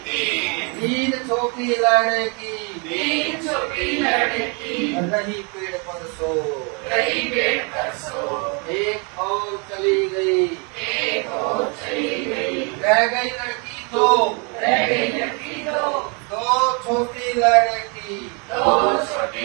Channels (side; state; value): left; quieter; 33.9 dB